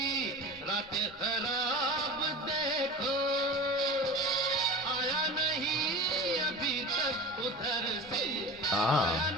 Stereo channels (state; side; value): normal; both; correlation 0.33